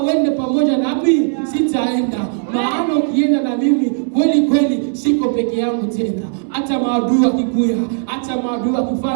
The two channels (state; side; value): silent; left; digital silence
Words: uende pamoja nami sitaenda, maana ukienda na mimi kweli kweli siko peke yangu tena. Hata maadui wakikuya, hata maadui